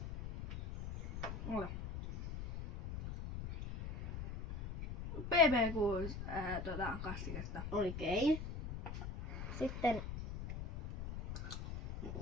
Ole. BB6 kastiketta. Oikein. Sitten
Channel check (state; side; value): noise; left; rumble, 7 dB below the sound